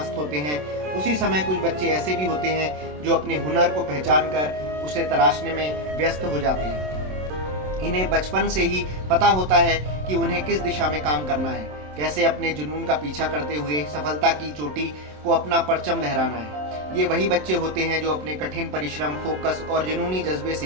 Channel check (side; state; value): left; late; 27 ms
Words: होते हैं, उसी समय कुछ बच्चे ऐसे भी होते हैं जो अपने हुनर को पहचान कर उसे तराशने में व्यस्त हो जाते हैं। इन्हें बचपन से ही पता होता है कि उन्हें किस दिशा में काम करना है, कैसे अपने जुनून का पीछा करते हुए सफलता की चोटी को अपना परचम लहराना है। ये वही बच्चे होते हैं जो अपने कठिन परिश्रम, फोकस और जुनूनी जज्बे